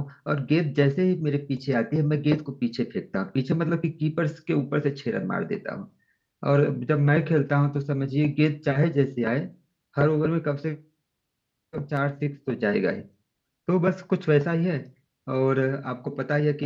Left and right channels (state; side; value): identical; both; correlation 1.00